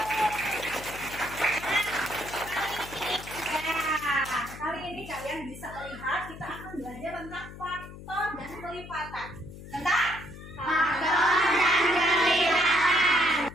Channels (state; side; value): noise; left; hum, 14 dB below the sound